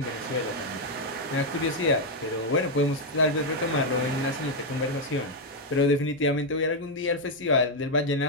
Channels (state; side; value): normal; both; correlation 0.01